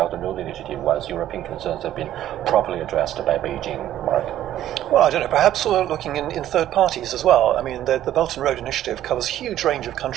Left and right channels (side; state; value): left; quieter; 12.4 dB